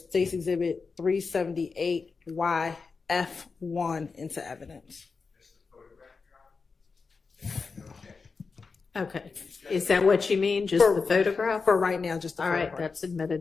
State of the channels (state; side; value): quieter; right; 4.7 dB